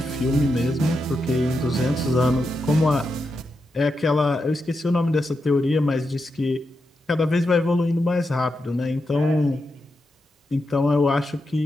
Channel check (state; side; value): normal; both; correlation 0.86